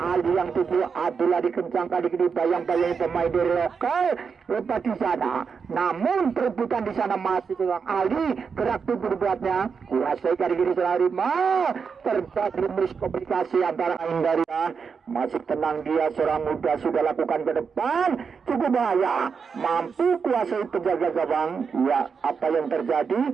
yang tujuh Abdullah dikencang kali ini bayang-bayang pemain dari lokal lepas di sana namun perebutan di sana masih dengan Ali gerak tubuh buatnya kuasai kali ini serangan Rima terjadi miskomunikasi antara dari masih tenang dia seorang muda sudah lakukan ke depan cukup bahaya mampu kuasai penjaga gawang ya apa yang terjadi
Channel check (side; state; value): left; quieter; 5.8 dB